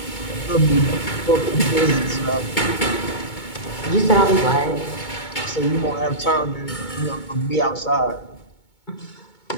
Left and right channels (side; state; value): right; late; 2.2 ms